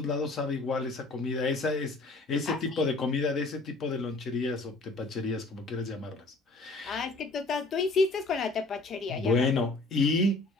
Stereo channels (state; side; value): quieter; right; 3.2 dB